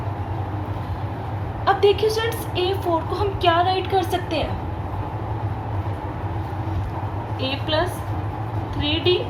अब देखिए स्टूडेंट्स, A4 को हम क्या राइट कर सकते हैं, a प्लस 3d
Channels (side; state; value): both; identical; correlation 1.00